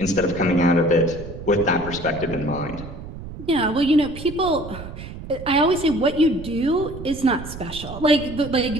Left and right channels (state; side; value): noise; right; rumble, 12 dB below the sound